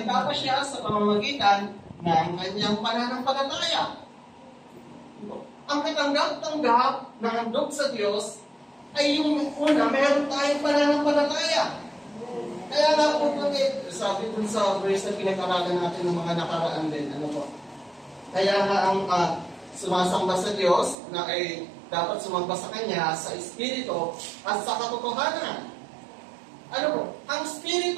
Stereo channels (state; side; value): drops out; left; at 21.0 s